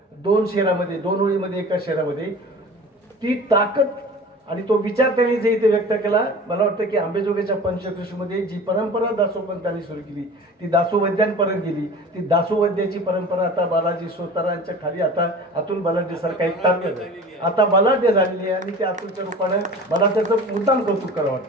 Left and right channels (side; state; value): both; normal; correlation 0.39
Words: 2 शेरामध्ये, 2 ओळीमध्ये, एका शेरामध्ये, ती ताकद आणि तो विचार त्यांनी जे इथे व्यक्त केला. मला वाटतं की आंबेजोगाईच्या पंचकृषीमध्ये जी परंपरा दासोपंतांनी सुरू केली ती दासोवैद्यांपर्यंत गेली. ती दासोवैद्याची परंपरा आता बालाजी सोतारांच्या खाली आता अतुल बलाढ्य सारखा एक ताकद आता बलाढ्य झालेली आहे आणि त्या अतुलच्या रूपाने मला त्याचं मुद्दाम कौतुक करावं